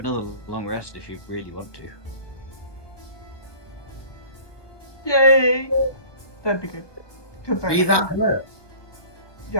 long rest if you really want to. Yay! That'd be good. 'Cause Are you that hurt? Yeah,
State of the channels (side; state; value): right; late; 1.2 ms